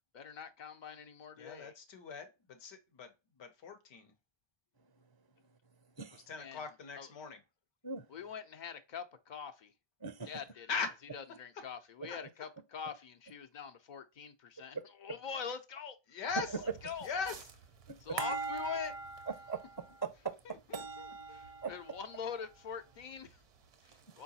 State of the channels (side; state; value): right; late; 1.2 ms